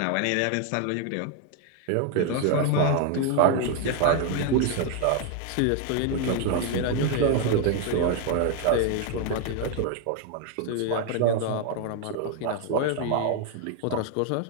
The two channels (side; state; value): both; different; correlation 0.01